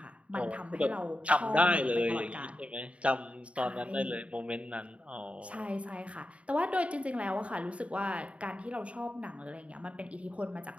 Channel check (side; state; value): left; late; 0.063 ms